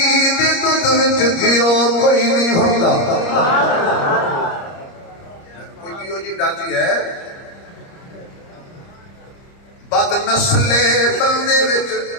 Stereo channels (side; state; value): right; late; 30 ms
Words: دے دودھ وچ گھیو کوئی نہیں ہوندا کوئی گھیو جی ڈاچی ہے بد نسلے بندے وچ